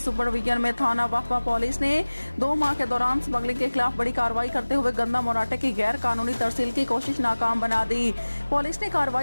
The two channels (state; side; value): inverted; both; correlation -1.00